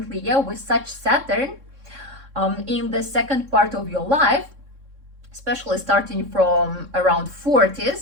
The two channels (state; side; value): late; left; 3.6 ms